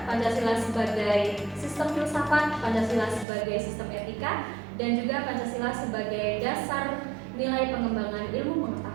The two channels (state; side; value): drops out; left; at 3.2 s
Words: Pancasila sebagai sistem filsafat, Pancasila sebagai sistem etika, dan juga Pancasila sebagai dasar nilai pengembangan ilmu